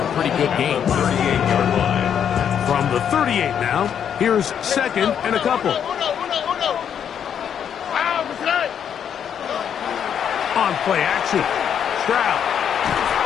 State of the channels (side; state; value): right; quieter; 8.5 dB